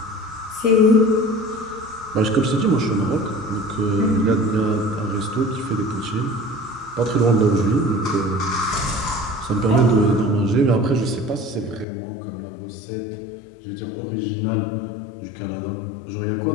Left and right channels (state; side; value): drops out; right; at 11.9 s